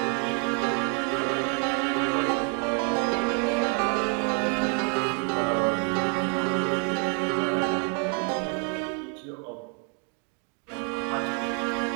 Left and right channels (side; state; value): left; quieter; 39.5 dB